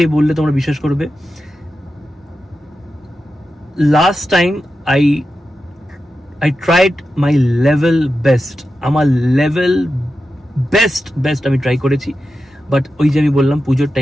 বললে তোমরা বিশ্বাস করবে, last time I tried my level best, আমার লেভেল বেস্ট আমি ট্রাই করেছি, বাট ওই যে আমি বললাম পুজোর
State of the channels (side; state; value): both; normal; correlation 0.91